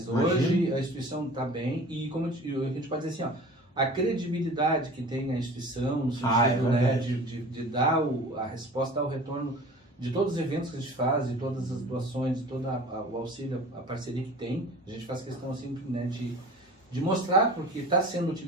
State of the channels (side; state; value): both; normal; correlation 0.41